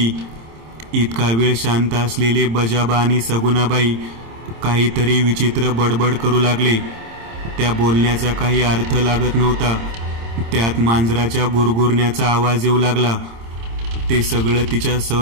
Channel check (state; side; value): late; left; 26 ms